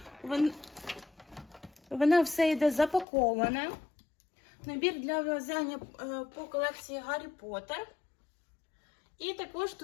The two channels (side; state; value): right; drops out; at 3.1 s